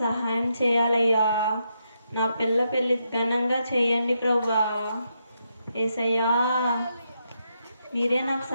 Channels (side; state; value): both; inverted; correlation -0.81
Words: సహాయం చేయాలయ్యా. నా పెళ్ళి ఘనంగా చేయండి ప్రభువా. యేసయ్యా, మీరే నాకు